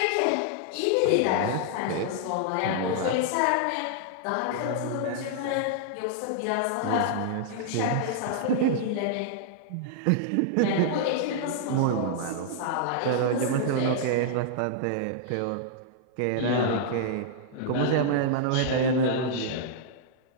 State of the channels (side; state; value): both; different; correlation -0.01